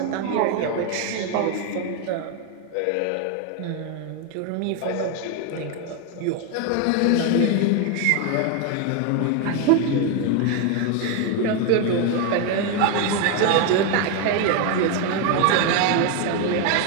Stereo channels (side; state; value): both; different; correlation 0.01